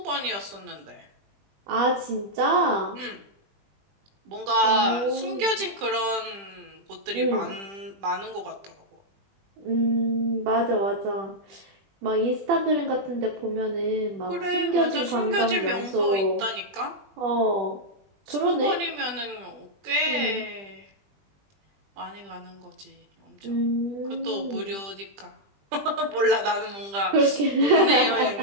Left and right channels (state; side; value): late; left; 20 ms